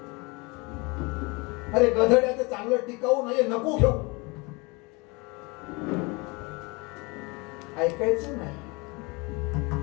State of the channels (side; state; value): right; quieter; 27.4 dB